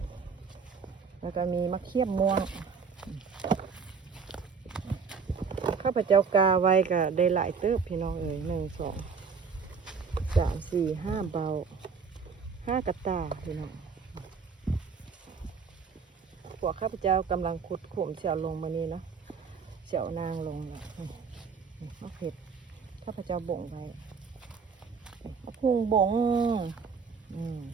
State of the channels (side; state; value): left; quieter; 5.7 dB